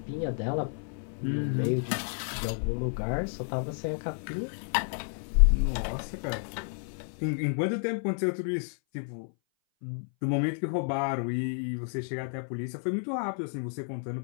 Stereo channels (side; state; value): right; silent; 57 dB below the other